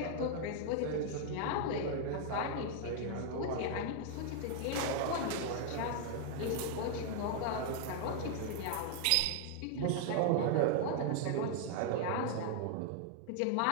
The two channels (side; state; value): both; different; correlation 0.00